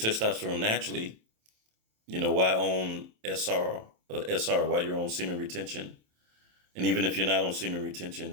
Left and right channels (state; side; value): late; left; 27 ms